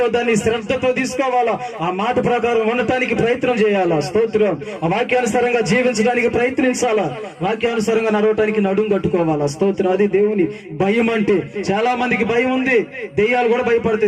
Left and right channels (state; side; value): identical; both; correlation 1.00